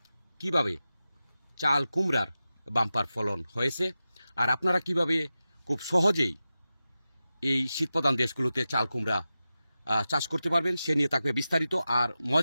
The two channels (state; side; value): inverted; both; correlation -0.93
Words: কিভাবে চাল কুমড়ার বাম্পার ফলন হয়েছে, আর আপনারা কিভাবে খুব সহজেই এই শীতপ্রধান দেশগুলোতে চাল কুমড়া চাষ করতে পারবেন সে নিয়ে থাকবে বিস্তারিত। আর